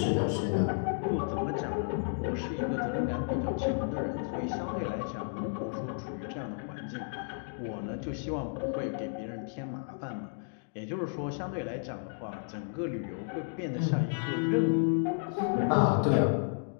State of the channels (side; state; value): right; silent; digital silence